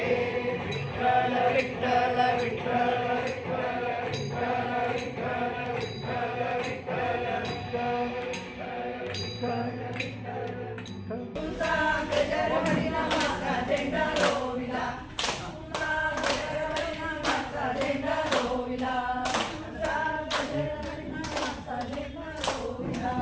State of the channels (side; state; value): both; identical; correlation 1.00